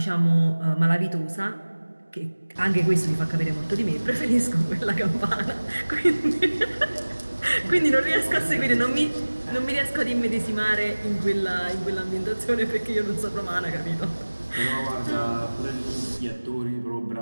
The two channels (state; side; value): inverted; both; correlation -1.00